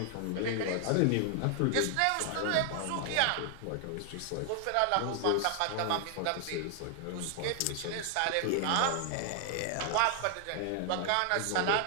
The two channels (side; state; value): both; different; correlation 0.00